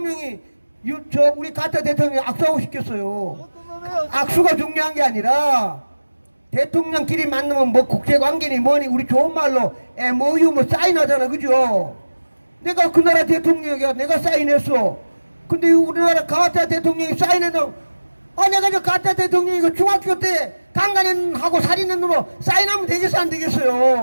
우리 가짜 대통령이 악수하고 싶겠어요? 악수가 중요한 게 아니라, 대통령끼리 만나면 국제관계니 뭐니 우리 좋은 말로 MOU 사인하잖아. 그죠? 내가 그 나라 대통령이야. 내가 사인했어. 근데 우리나라 가짜 대통령이 사인해도, 내가 저 가짜 대통령이고 중학교 때 강간하고 살인한 놈으로 사인하면 되겠어, 안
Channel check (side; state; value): both; inverted; correlation -1.00